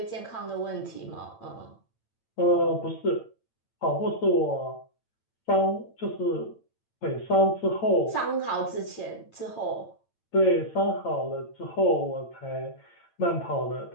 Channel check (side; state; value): right; late; 8.9 ms